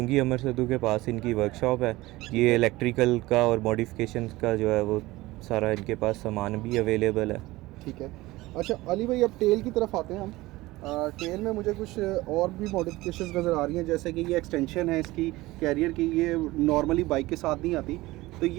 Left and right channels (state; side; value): quieter; left; 19.2 dB